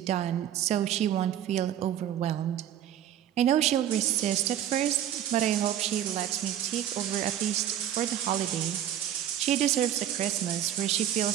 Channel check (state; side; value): quieter; left; 10.8 dB